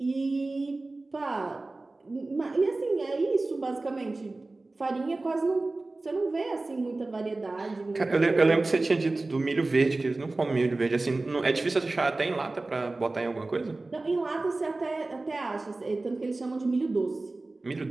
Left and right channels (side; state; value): left; quieter; 3.2 dB